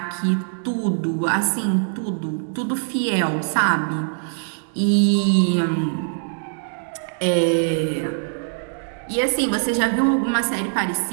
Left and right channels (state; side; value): silent; left; digital silence